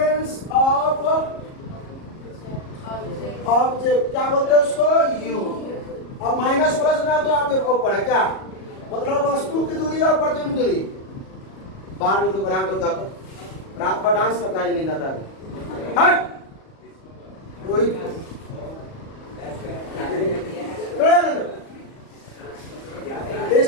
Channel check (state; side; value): late; right; 37 ms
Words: ऑफ ऑब्जेक्ट क्या बोलते हैं उसको? यू। अब माइनस प्लस ना तो आपके ऊपर है क्या, मतलब वस्तु वस्तु की दूरी और प्रतिबिंब दूरी। बाहर निकलो, बना दो क्या रात भर डांस करता है, नींद आता है। Rohit